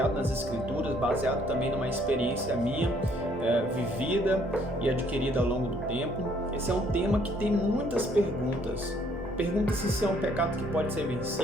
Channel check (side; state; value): both; normal; correlation 0.64